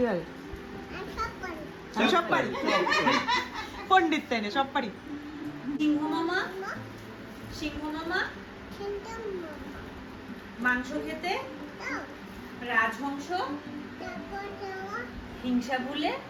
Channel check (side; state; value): both; identical; correlation 1.00